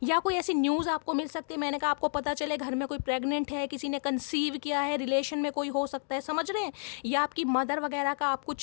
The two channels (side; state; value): right; silent; digital silence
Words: या कोई ऐसी न्यूज़ आपको मिल सकती है, मैंने कहा आपको पता चले घर में कोई प्रेग्नेंट है, किसी ने कंसीव किया है, रिलेशन में कोई हो सकता है, समझ रहे हैं, या आपकी मदर वगैरह का आप